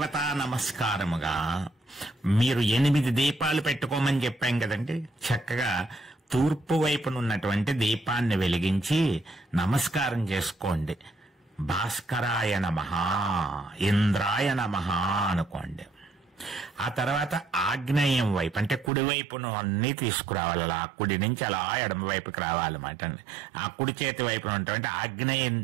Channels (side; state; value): left; drops out; at 18.9 s